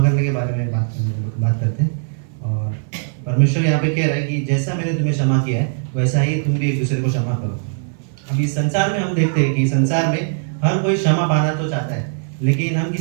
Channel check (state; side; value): silent; left; 56 dB below the other